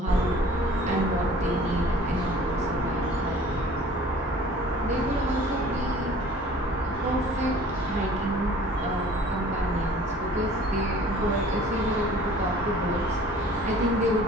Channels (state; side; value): normal; both; correlation 0.49